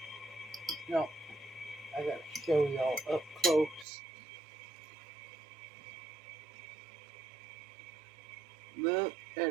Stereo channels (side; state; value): left; drops out; at 3.9 s